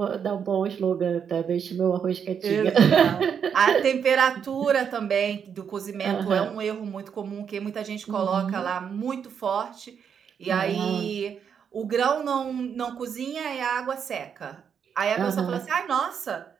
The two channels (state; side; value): quieter; left; 7.4 dB